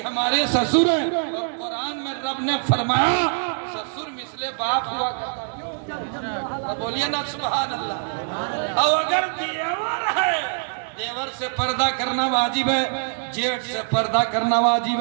हमारे ससुर हैं। और कुरान में रब ने फरमाया ससुर मिसले बाप हुआ करता। बोलिए ना सुभान अल्लाह। और अगर देवर है, देवर से पर्दा करना वाजिब है, जेठ से पर्दा करना वाजिब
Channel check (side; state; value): left; silent; digital silence